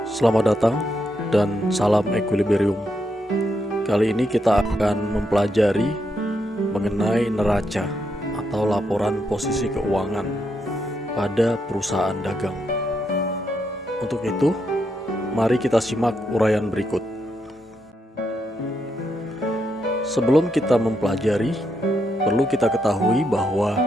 Selamat datang dan salam equilibrium. Kali ini kita akan mempelajari mengenai neraca atau laporan posisi keuangan pada perusahaan dagang. Untuk itu, mari kita simak uraian berikut. Sebelum kita mempelajari, perlu kita ketahui bahwa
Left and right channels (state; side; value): normal; both; correlation 0.80